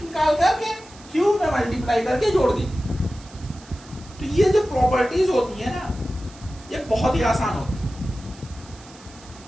निकाल करके क्यू में मल्टीप्लाई करके जोड़ दी। तो ये जो प्रॉपर्टीज होती है ना, ये बहुत ही आसान होती है।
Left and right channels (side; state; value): right; noise; hiss, 22 dB below the sound